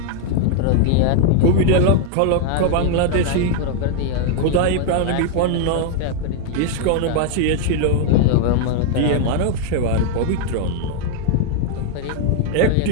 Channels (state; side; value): different; both; correlation 0.00